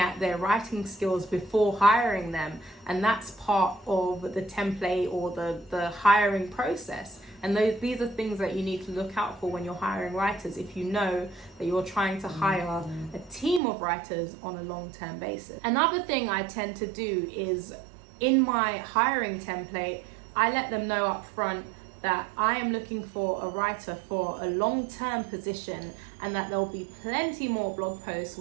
their writing skills before hiring them. And that's part of the template or the hiring process. And these are things that you need to look out for when you're hiring writers, if you know that you're trying to hire a team of writers on a long-term basis. Another thing I tend to do is, in my hiring template, I let them know up front that I am looking for a writer for a long-term position, and that there'll be plenty more blog posts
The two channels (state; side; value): drops out; left; at 13.6 s